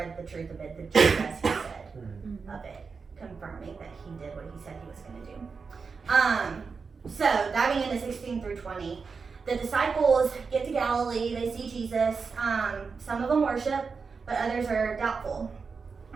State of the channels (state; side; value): quieter; left; 5.1 dB